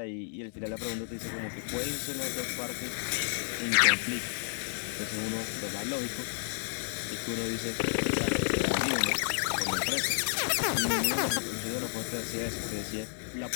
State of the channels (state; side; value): silent; right; 57 dB below the other